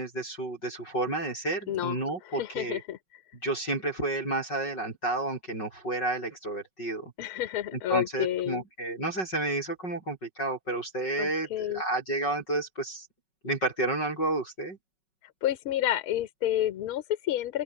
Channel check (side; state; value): right; late; 5.4 ms